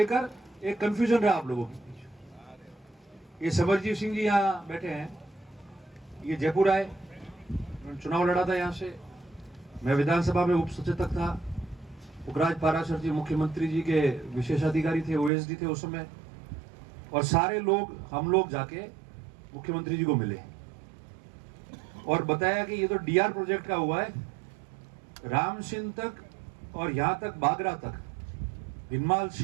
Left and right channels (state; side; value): drops out; left; at 15.3 s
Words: एक कंफ्यूजन रहा आप लोगों के बीच। ये समरजीत सिंह जी यहाँ बैठे हैं, ये जयपुर आए, चुनाव लड़ा था यहाँ से, मैं विधानसभा में उप सचेतक था। पुखराज पाराशर जी मुख्यमंत्री जी के विशेषाधिकारी थे, ओएसडी थे उस समय, और सारे लोग, हम लोग जाके मुख्यमंत्री जी को मिले और बताया कि ये तो डीआर प्रोजेक्ट का हुआ है, रामसिंह तक और यहाँ तक बागरा तक, भिनमाल